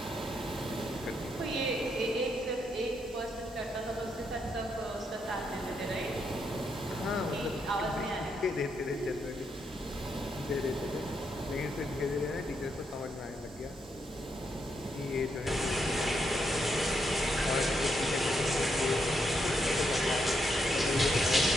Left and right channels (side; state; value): both; normal; correlation 0.79